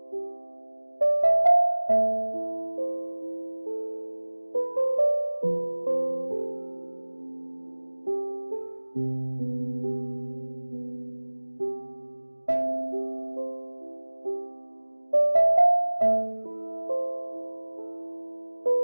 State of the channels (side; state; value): both; inverted; correlation -1.00